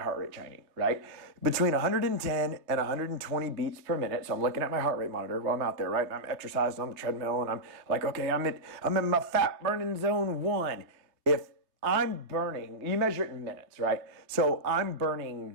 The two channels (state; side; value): late; left; 3.2 ms